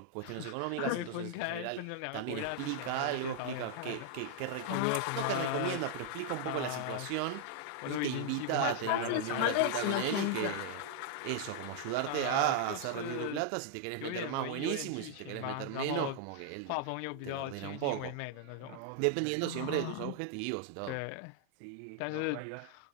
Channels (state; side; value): different; both; correlation 0.00